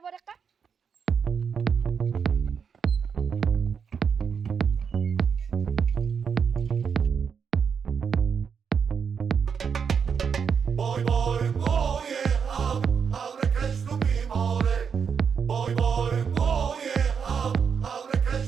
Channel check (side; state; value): left; quieter; 6.6 dB